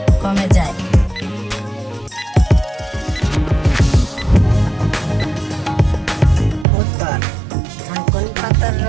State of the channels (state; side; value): drops out; left; at 6.7 s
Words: কমে যায়? উত্তর, থানকুনি পাতার